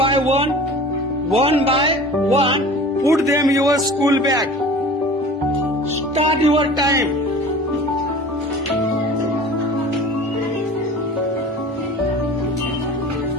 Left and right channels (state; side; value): normal; both; correlation 0.41